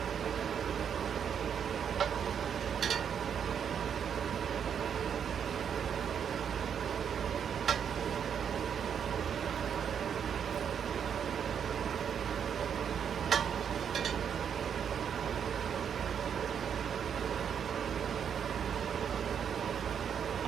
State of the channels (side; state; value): left; quieter; 7.8 dB